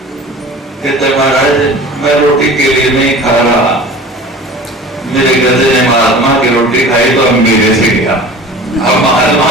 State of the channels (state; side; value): normal; both; correlation 0.40